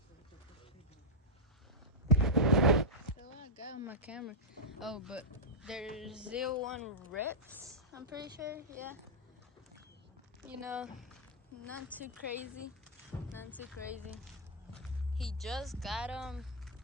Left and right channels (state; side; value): normal; both; correlation -0.07